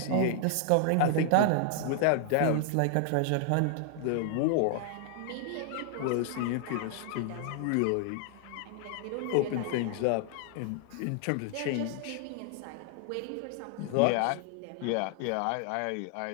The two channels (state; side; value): different; both; correlation 0.00